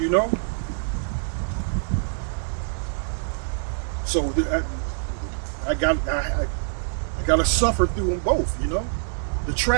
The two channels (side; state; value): left; silent; digital silence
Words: So I got to suffer through them both, The